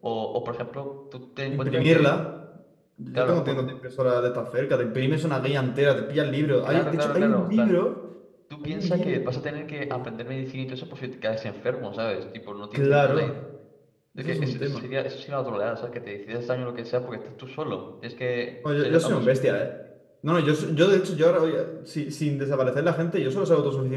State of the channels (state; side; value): identical; both; correlation 1.00